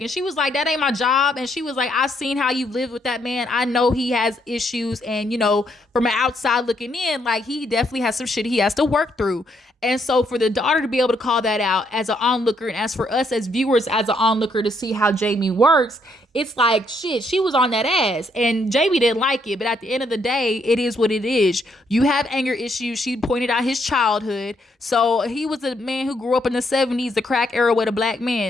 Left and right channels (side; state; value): both; normal; correlation 0.73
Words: And she was like, that ain't my job. And she was like, I've seen how you live with that man. I know he has issues. And, from an outside looking in, like he definitely has some shit he has to work through. And so for the daughter to be able to call that out as an onlooker, and as for us as viewers, as an onlooker, to see how Jamie works, it's like, shit, she was on that ass. And Jamie didn't like it. But at the end of the day, it is what it is. You have anger issues. She pointed out his childhood. So he was a man who grew up in the 70s, the crack era, with a black